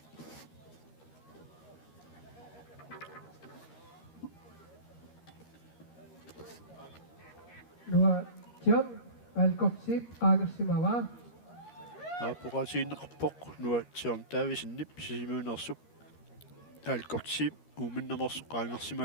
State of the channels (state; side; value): late; right; 13 ms